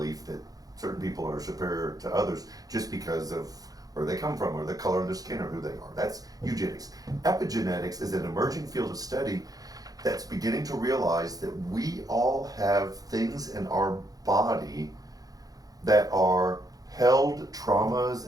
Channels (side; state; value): left; late; 0.18 ms